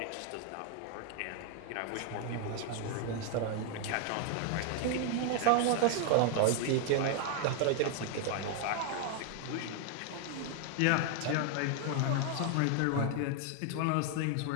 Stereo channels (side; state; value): both; different; correlation 0.00